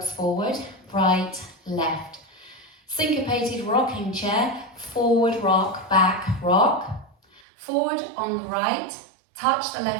forward, right, left. Syncopated rocking chair, forward rock, back rock. Forward on the right, touch the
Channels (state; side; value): drops out; left; at 7.4 s